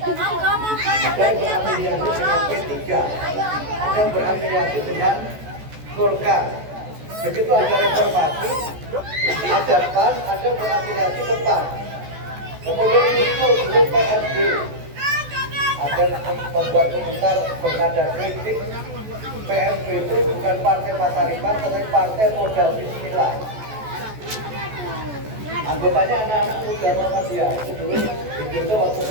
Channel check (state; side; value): late; left; 14 ms